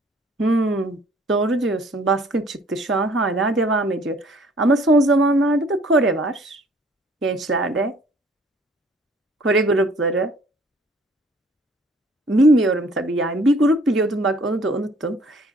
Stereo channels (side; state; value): both; normal; correlation 0.57